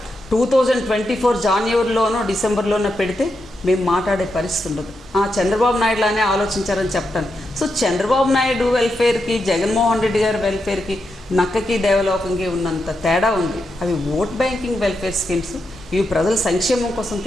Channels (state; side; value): normal; both; correlation 0.85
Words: 2024 జనవరిలోనో డిసెంబర్లోనో పెడితే మేము మాట్లాడే పరిస్థితి ఉండదు. చంద్రబాబు నాయుడులానే ఆలోచించారని చెప్తాను. సో చంద్రబాబు నాయుడు వెల్ఫేర్కి, జగన్మోహన్ రెడ్డి గారి వెల్ఫేర్కి, నక్కకి దేవలోకంకి ఉన్నంత తేడా ఉంది. అవి ఓట్ బ్యాంకింగ్ వెల్ఫేర్ స్కీమ్స్, ఇవి ప్రజల సంక్షేమం కోసం